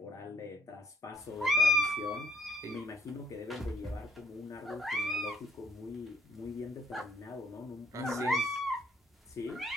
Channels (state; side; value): normal; both; correlation 0.64